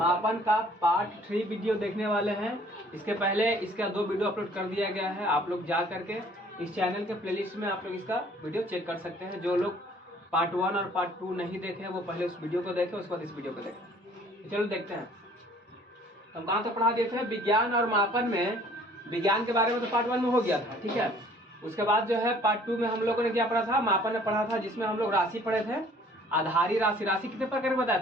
का पार्ट 3 वीडियो देखने वाले हैं। इसके पहले इसका 2 वीडियो अपलोड कर दिया गया है। आप लोग जा करके इस चैनल के प्लेलिस्ट में आप लोग इसका वीडियो चेक कर सकते हैं। जो लोग पार्ट 1 और पार्ट 2 नहीं देखे वो पहले उस वीडियो को देखें, उसके बाद इस वीडियो को देखें। चलो देखते हैं हम कहाँ तक पढ़ा दिए थे। विज्ञान और मापन में विज्ञान के बारे में तो पार्ट 1 में हो गया था, ठीक है। उसके बाद जो है पार्ट 2 में हम लोगों ने क्या पढ़ा था, मापन में पढ़ा था, जिसमें हम लोग राशि पढ़े थे। आधारी राशि, राशि कितने प्रकार के बताए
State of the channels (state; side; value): normal; both; correlation 0.55